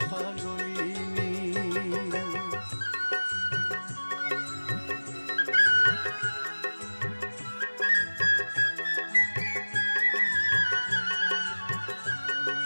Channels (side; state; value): both; inverted; correlation -1.00